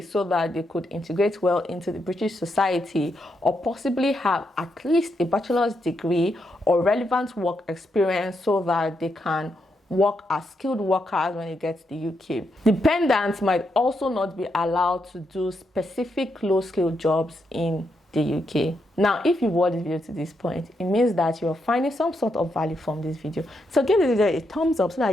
so that they could integrate well into the British society, or possibly have at least a bachelor's degree or relevant work experience so that they can work as skilled workers when they get to the UK. Dependents might also not be allowed to do specific low-skilled jobs in the UK. Now, if you watched this video to this point, it means that you're finding some sort of value from this video. So give this video a thumbs up so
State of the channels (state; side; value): normal; both; correlation 0.81